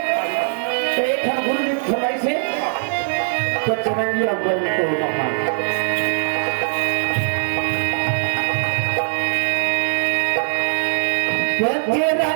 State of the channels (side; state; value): left; silent; digital silence